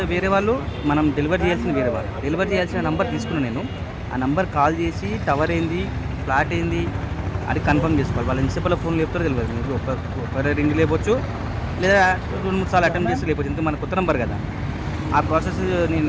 వేరే వాళ్ళు, మనం డెలివరీ చేయాల్సిన వేరే వాళ్ళు. డెలివరీ చేయాల్సిన నెంబర్ తీసుకున్నాను నేను. ఆ నెంబర్ కాల్ చేసి టవర్ ఏంది, ఫ్లాట్ ఏంది అది కన్ఫర్మ్ చేసుకోవాలి. వాళ్ళు ఎన్నిసేపట్లో ఫోన్ లేపుతారో తెలియదు. మీకు ఒక రింగ్ లేపొచ్చు, లేదా 2-3 సార్లు అటెంప్ట్ చేసి లేకపోవచ్చు. ఇంత మన కొత్త నెంబర్ కదా, ఆ ప్రాసెస్ నేను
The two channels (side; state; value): both; identical; correlation 1.00